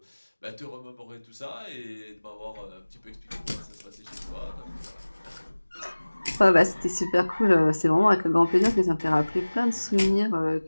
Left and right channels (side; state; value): both; inverted; correlation -1.00